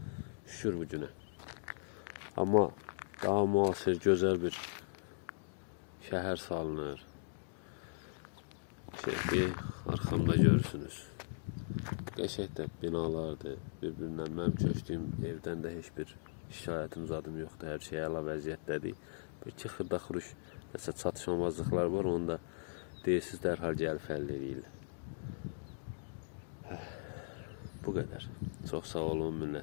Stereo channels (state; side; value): silent; right; digital silence